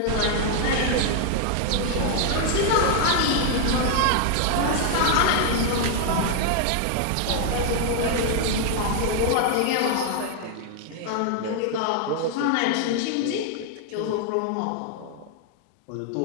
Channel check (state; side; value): different; both; correlation 0.00